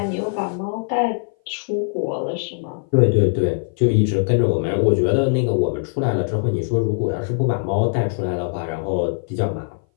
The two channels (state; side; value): silent; right; 59 dB below the other